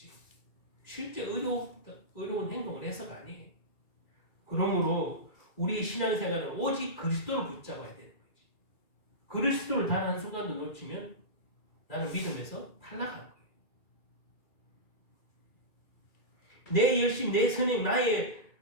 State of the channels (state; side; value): late; right; 2.3 ms